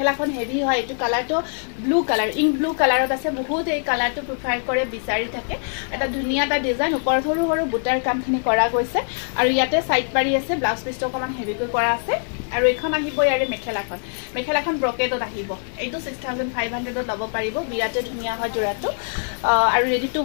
হেভি হয় এইটো কালাৰটো ব্লু কালাৰ ইংক ব্লু কালাৰত আছে বহুত এই কালাৰটো প্ৰিফাৰ কৰে বিচাৰি থাকে এটা ধুনীয়া এটা ডিজাইন ওপৰত সৰু সৰু বুটাৰ কামখিনি কৰা গৈছে আৰু ইয়াতে সাইড পাৰি আছে ব্লাউজ পিছটো অকমান হেভিকৈ কৰা আছে আৰু এখন আহিব ইয়াৰে মেখেলাখন ব্ৰকেটত আহিব এইটো 6500 ত ল'ব পাৰিব বিৰাটে ধুনীয়া হয় জোড়াটো আৰু ৰেডি টু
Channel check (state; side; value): silent; right; 64 dB below the other